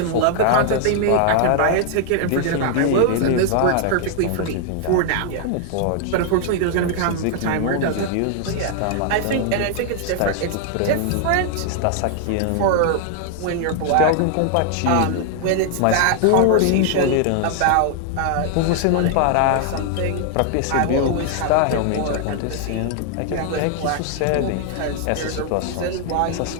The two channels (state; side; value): different; both; correlation 0.00